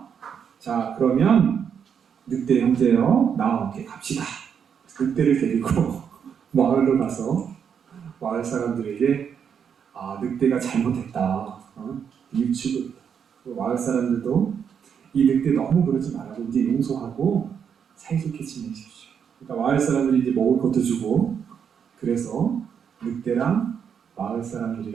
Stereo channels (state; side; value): quieter; left; 7.5 dB